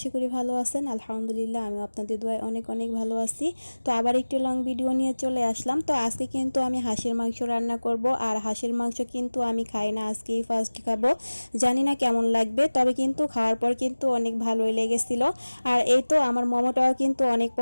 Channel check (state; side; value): inverted; both; correlation -1.00